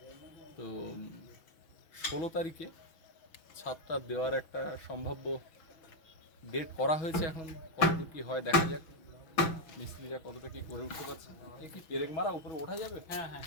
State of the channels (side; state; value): right; late; 6.2 ms